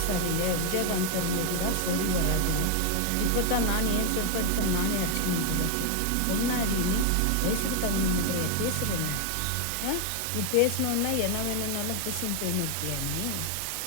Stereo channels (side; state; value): both; different; correlation 0.00